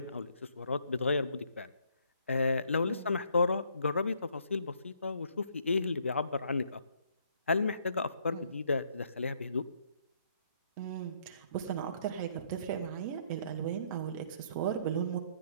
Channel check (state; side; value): inverted; both; correlation -0.68